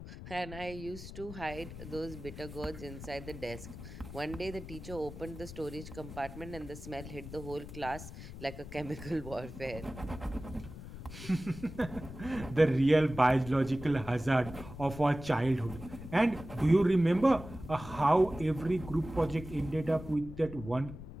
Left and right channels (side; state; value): left; noise; rumble, 12 dB below the sound